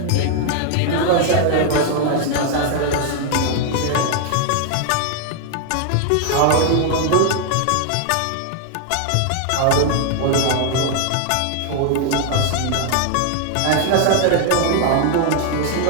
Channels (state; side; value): different; both; correlation 0.00